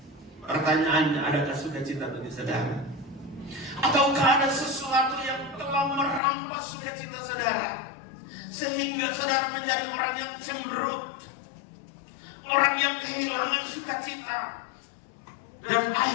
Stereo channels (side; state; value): right; drops out; at 6.2 s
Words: Pertanyaannya, adakah sukacita bagi saudara? Ataukah ada sesuatu yang telah merampas sukacita saudara, sehingga saudara menjadi orang yang cemberut, orang yang kehilangan sukacita, dan